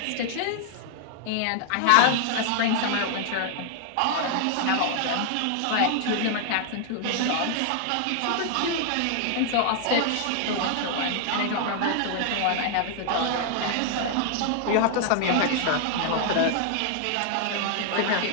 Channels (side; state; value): both; different; correlation 0.00